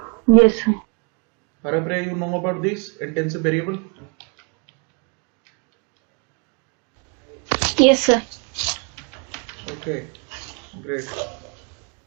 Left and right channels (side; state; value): left; quieter; 34.9 dB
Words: Yes, sir. Harapriya, you know about this intensive variable? Yes, sir. Okay, great.